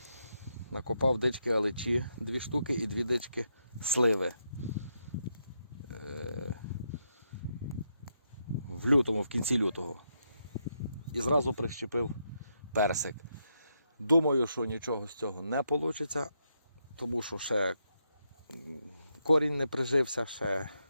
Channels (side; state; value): both; inverted; correlation -0.81